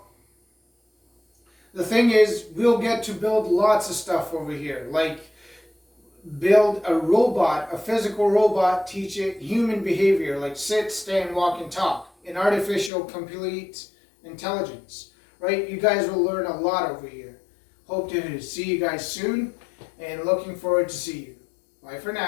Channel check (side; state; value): right; drops out; at 12.9 s